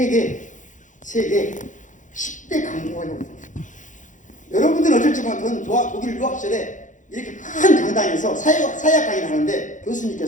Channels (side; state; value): right; late; 0.37 ms